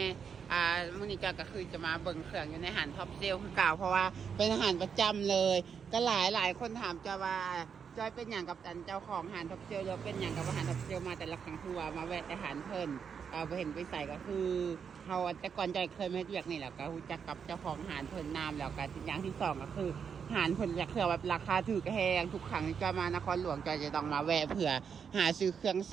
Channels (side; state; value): left; quieter; 6.8 dB